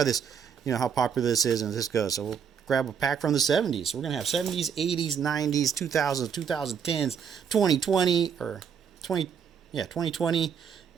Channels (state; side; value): quieter; left; 7.3 dB